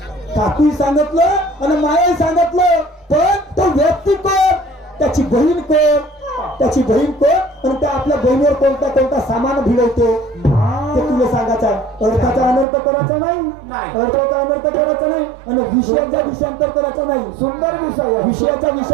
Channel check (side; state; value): left; drops out; at 12.7 s